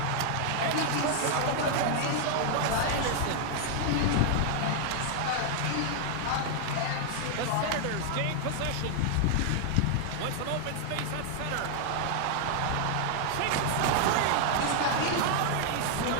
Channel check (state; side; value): different; both; correlation 0.00